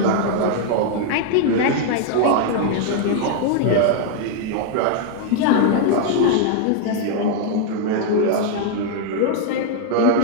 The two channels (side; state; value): both; different; correlation 0.00